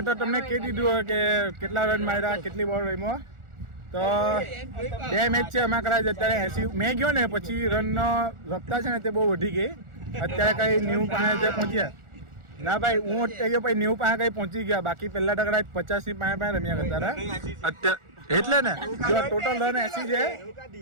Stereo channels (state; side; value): late; left; 1.4 ms